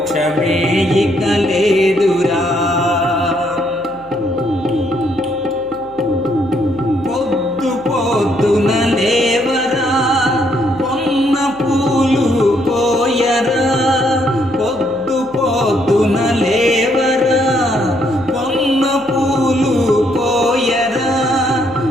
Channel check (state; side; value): noise; left; hum, 27 dB below the sound